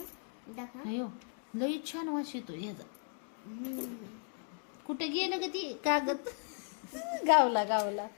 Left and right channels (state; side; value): silent; right; 54 dB below the other